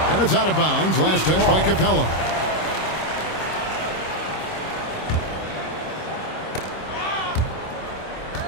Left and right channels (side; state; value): right; late; 26 ms